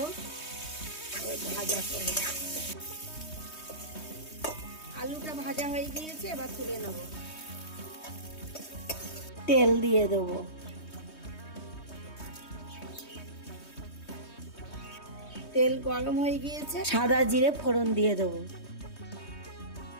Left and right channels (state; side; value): late; right; 3.2 ms